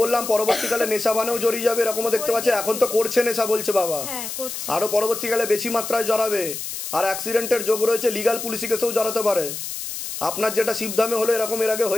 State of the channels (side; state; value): left; noise; hiss, 7 dB below the sound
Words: বললাম, পরবর্তীকালে নেশাবানেও জড়িয়ে যাবে, এরকমও দেখতে পাচ্ছে। এখন তো করছে নেশা, বলছে বাবা। হ্যাঁ করছে। আরো পরবর্তীকালে বেশি মাত্রায় জড়াবে। আর অ্যাক্সিডেন্টের যোগ রয়েছে, লিগাল পুলিশি কেসেও জড়াতে পারে। আপনার যেটা শিবধামে হলো, এরকম এর আগে